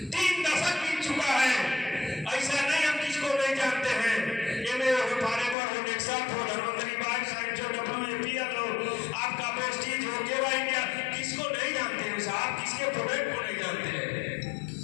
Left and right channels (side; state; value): right; drops out; at 5.6 s